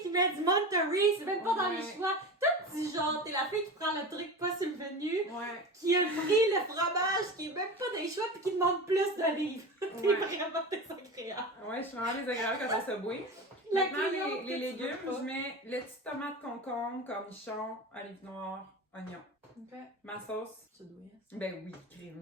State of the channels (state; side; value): normal; both; correlation 0.28